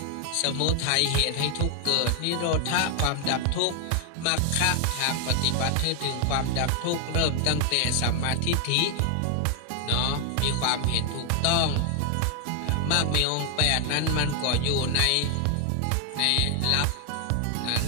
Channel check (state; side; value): different; both; correlation 0.00